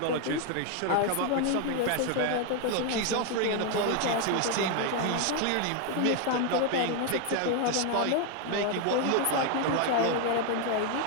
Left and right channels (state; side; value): different; both; correlation 0.01